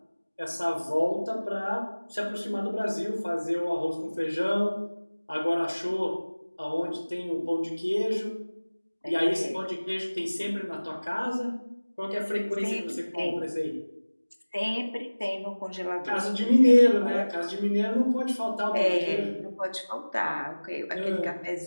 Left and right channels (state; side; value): inverted; both; correlation -1.00